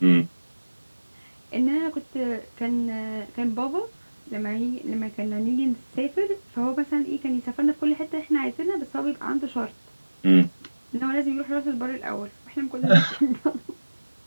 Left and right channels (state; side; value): inverted; both; correlation -1.00